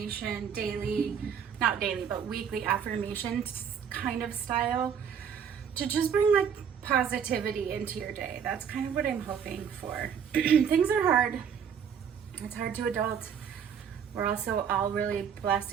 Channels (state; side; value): quieter; left; 7.6 dB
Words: daily, not daily, but weekly affirmation kind of style to just bring like positivity into your day. That's kind of what I'm hoping for. Things are hard. It's hard to adult. We're also all really